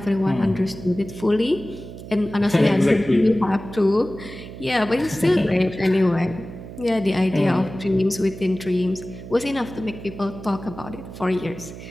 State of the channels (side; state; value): right; noise; hum, 13 dB below the sound